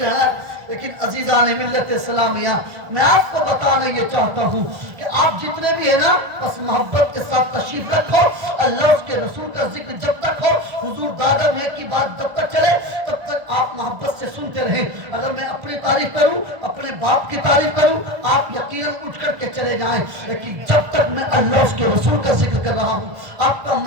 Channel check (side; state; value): left; late; 1.5 ms